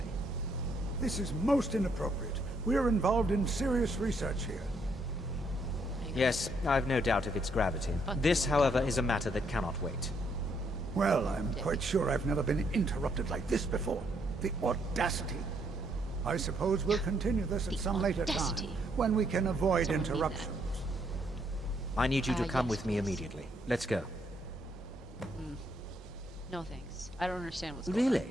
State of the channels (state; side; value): normal; both; correlation 0.72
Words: This is most inappropriate. We're involved in serious research here. Yes, I've no doubt of its gravity. This, however, is a matter that cannot wait. Well, I'm quite sure I've never been interrupted like this before. The audacity. I suppose we'll continue this at some later time, when we can avoid interruptions. I need you to come with me immediately. Let's go. No thanks. I don't understand what's going on.